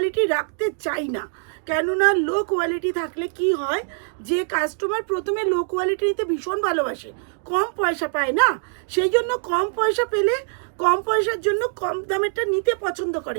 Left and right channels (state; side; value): silent; left; digital silence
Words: রাখতে চাই না, কেননা লো কোয়ালিটি থাকলে কি হয়, যে কাস্টমার প্রথমে লো কোয়ালিটি নিতে ভীষণ ভালোবাসে, কম পয়সা পায় না, সেই জন্য কম পয়সা পেলে কম পয়সার জন্য কম দামেরটা নিতে পছন্দ